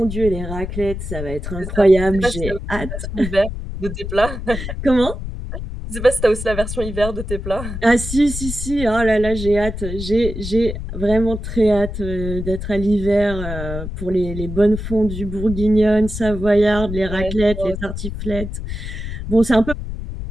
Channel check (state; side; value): noise; left; rumble, 7 dB below the sound